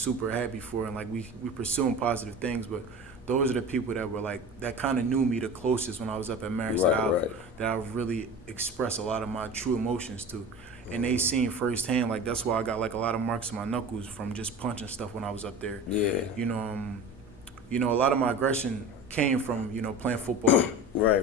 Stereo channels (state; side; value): normal; both; correlation 0.34